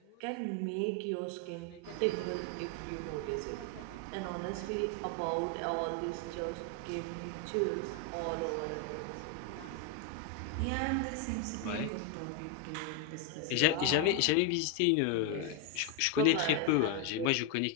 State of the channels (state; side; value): different; both; correlation 0.01